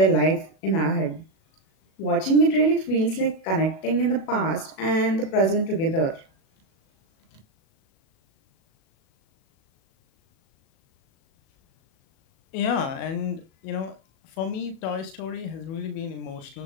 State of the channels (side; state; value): right; late; 37 ms